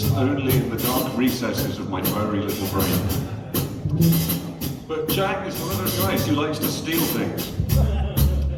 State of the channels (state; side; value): identical; both; correlation 1.00